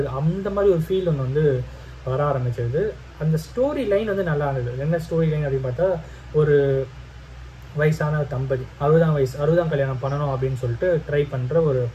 அந்த மாதிரி ஒரு ஃபீல் ஒன்று வந்து வர ஆரம்பிச்சிருது. அந்த ஸ்டோரி லைன் வந்து நல்லா இருந்தது. என்ன ஸ்டோரி லைன் அப்படின்னு பார்த்தா, ஒரு வயசான தம்பதி 60ஆம் கல்யாணம் பண்ணணும் அப்படின்னு சொல்லிட்டு ட்ரை பண்ணுற ஒரு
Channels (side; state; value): both; identical; correlation 1.00